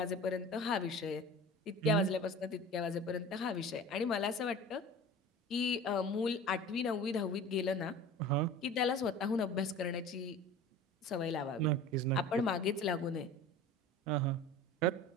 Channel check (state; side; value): normal; both; correlation 0.38